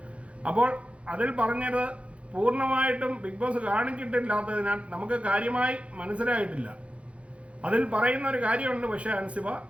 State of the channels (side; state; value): left; late; 0.062 ms